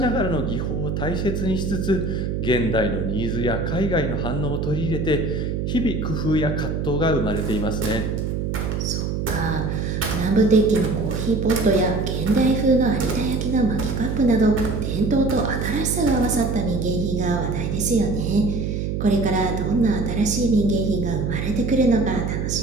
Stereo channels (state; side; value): noise; right; hum, 1 dB below the sound